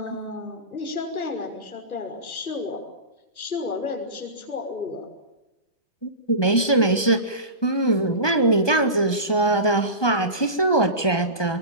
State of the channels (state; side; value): late; right; 1.2 ms